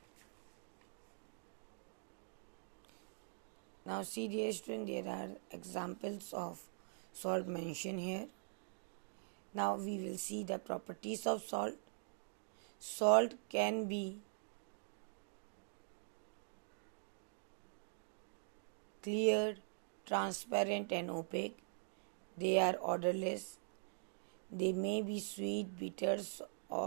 Now see, dear student, there are examples of salt mentioned here. Now we will see the properties of salt. Salt can be clear, transparent and opaque. They are odorless. They may be sweet, bitter,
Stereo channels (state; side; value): silent; left; digital silence